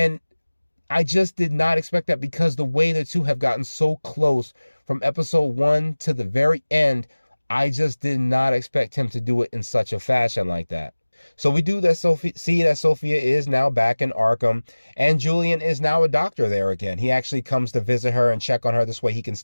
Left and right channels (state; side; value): inverted; both; correlation -1.00